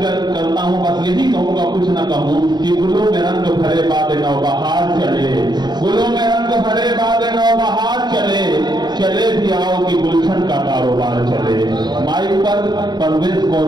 करता हूँ, बस यही कहूँगा, कुछ ना कहूँ, कि गुलों में रंग भरे बादे नौबहार चले, गुलों में रंग भरे बादे नौबहार चले, चले भी आओ कि गुलशन का कारोबार चले। माइक पर परवेज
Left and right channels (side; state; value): left; late; 0.21 ms